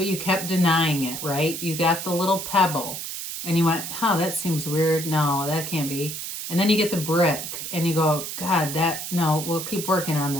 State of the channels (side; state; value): right; noise; hiss, 6 dB below the sound